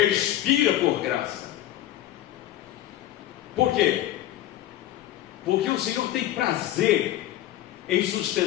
por graça. Por quê? Porque o Senhor tem prazer em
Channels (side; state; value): right; quieter; 13.4 dB